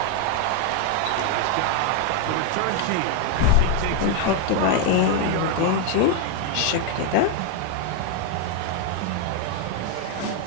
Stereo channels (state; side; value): different; both; correlation 0.01